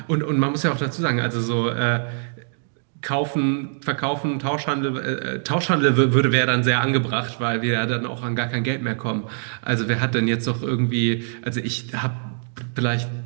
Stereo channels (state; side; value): silent; left; digital silence